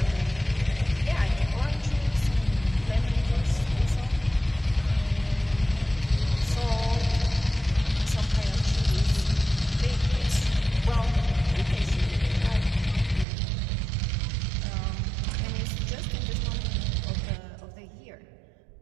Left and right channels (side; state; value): left; drops out; at 13.2 s